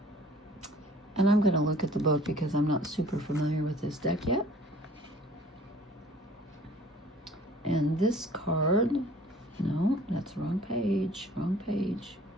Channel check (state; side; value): normal; both; correlation 0.52